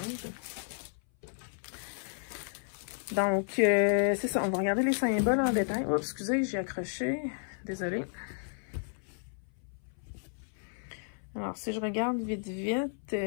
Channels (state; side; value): silent; right; 56 dB below the other